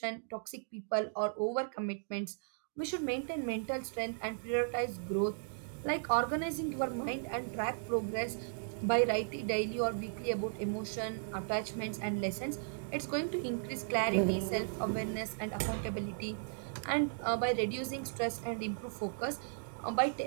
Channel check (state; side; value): silent; left; digital silence